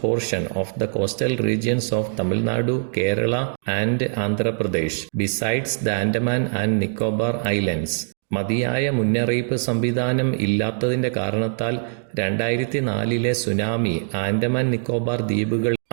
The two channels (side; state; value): left; silent; digital silence